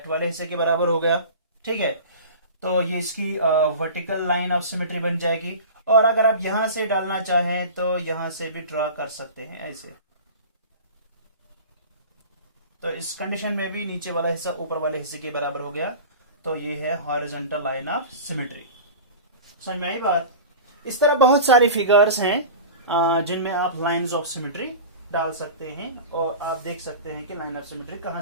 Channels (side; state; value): both; inverted; correlation -0.35